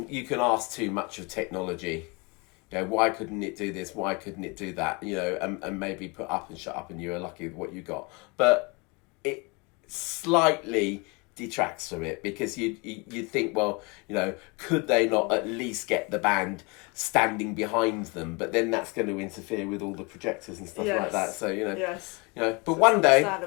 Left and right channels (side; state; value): right; quieter; 29.0 dB